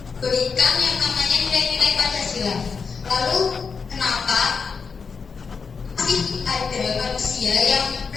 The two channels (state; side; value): quieter; right; 5.4 dB